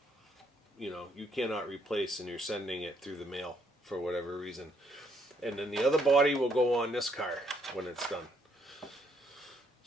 you cannot replace, and you're sending it through the mail for whatever reason. And then the other body will go on this car when it's done.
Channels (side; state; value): both; normal; correlation 0.71